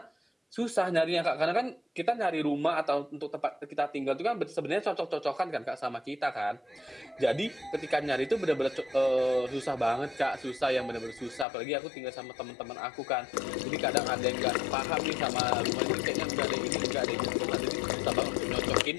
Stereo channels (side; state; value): right; drops out; at 11.5 s